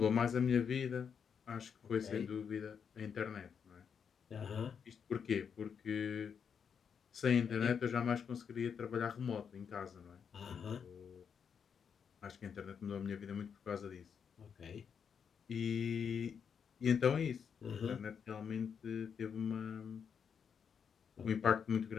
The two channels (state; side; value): quieter; right; 7.0 dB